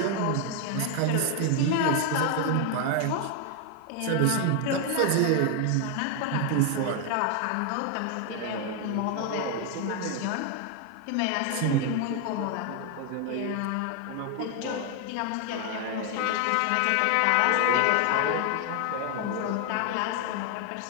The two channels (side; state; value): both; different; correlation 0.00